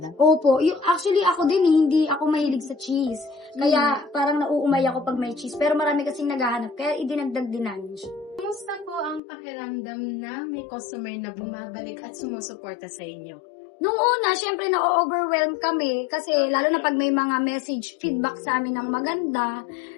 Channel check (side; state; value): right; drops out; at 9.2 s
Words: Opo, actually ako din hindi ako mahilig sa cheese. Kaya parang nauumay ako pag may cheese. Pero marami kasing naghahanap, kaya idinagdag din namin siya. Kumusta po ang pakiramdam na may customer na bumabalik at sumusuporta sa inyo? Nung una, syempre na-overwhelm kami kasi lalo na pag may mga message, feedback sa amin ng maganda.